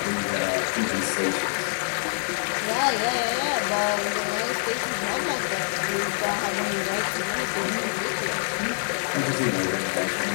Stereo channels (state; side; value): silent; right; 61 dB below the other